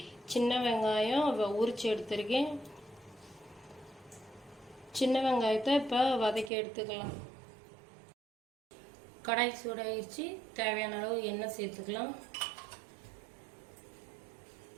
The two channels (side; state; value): left; drops out; at 6.5 s